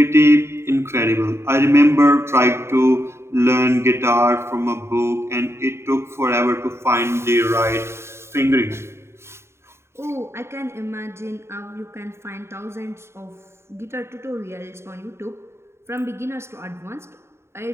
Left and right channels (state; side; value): late; left; 0.13 ms